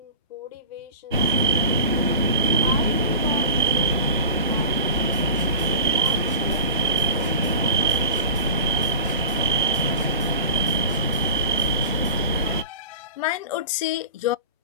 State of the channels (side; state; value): both; inverted; correlation -0.34